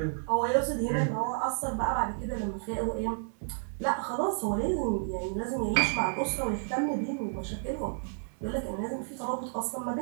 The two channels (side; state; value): left; silent; 57 dB below the other